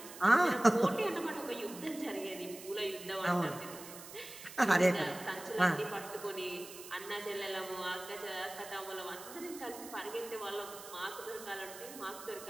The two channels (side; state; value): right; noise; hiss, 14 dB below the sound